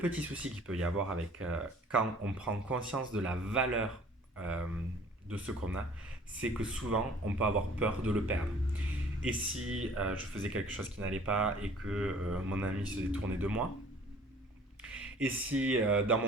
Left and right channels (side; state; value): both; normal; correlation 0.52